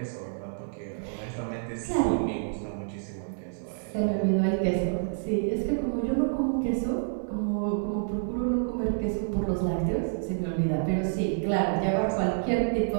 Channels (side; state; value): left; silent; digital silence